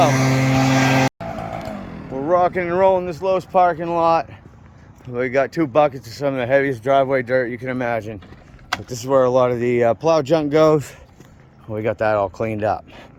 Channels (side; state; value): both; identical; correlation 1.00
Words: We're rocking and rolling this Lowe's parking lot. We got 2 buckets of some of the heaviest driveway dirt you can imagine. But this is where a lot of the plow junk goes. We got that all cleaned up.